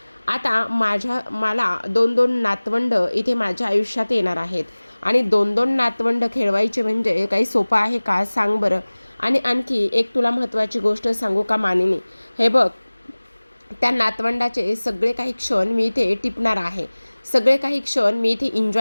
आता मला 2-2 नातवंड इथे माझ्या आयुष्यात येणार आहेत आणि 2-2 नातवंड खेळवायचे म्हणजे काही सोपं आहे का, सांग बरं. आणि आणखी एक तुला महत्त्वाची गोष्ट सांगू का मानिनी, हे बघ, त्या नातवंडाचे सगळे काही क्षण मी इथे टिपणार आहे, सगळे काही क्षण मी इथे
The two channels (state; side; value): inverted; both; correlation -1.00